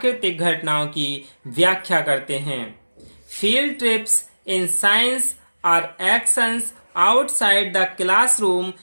घटनाओं की व्याख्या करते हैं। Field trips in science are actions outside the classroom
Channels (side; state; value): both; inverted; correlation -1.00